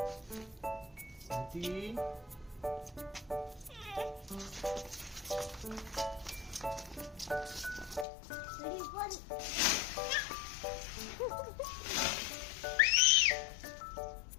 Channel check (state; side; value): drops out; right; at 8.1 s